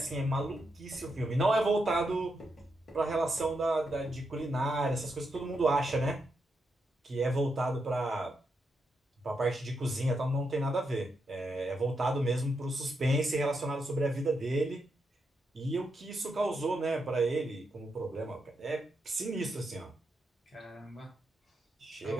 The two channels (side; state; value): both; normal; correlation 0.83